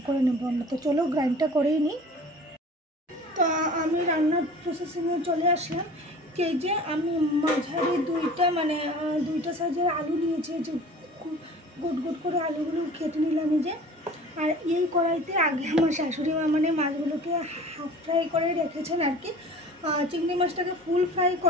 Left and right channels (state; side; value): normal; both; correlation 0.43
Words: করে নেব আমরা। তো চলো গ্রাইন্ডটা করেই নিই। তো আমি রান্নার প্রসেসিংয়ে চলে আসলাম। এই যে আমি মাঝারি দুইটা সাইজের আলু নিয়েছি, যে গোট গোট করে আলুগুলো কেটে নিলাম এই যে। আর এই কড়াইতে আগে আমার শাশুড়ি মা মাছগুলোকে হাফ ফ্রাই করে রেখেছেন আর কি। চিংড়ি মাছটাকে ফুল ফ্রাই